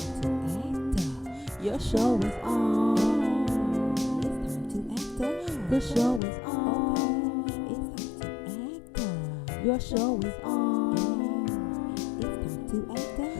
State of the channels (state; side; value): drops out; right; at 6.2 s